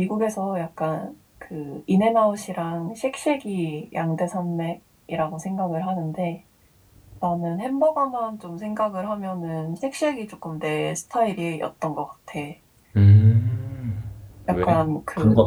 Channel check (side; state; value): both; identical; correlation 1.00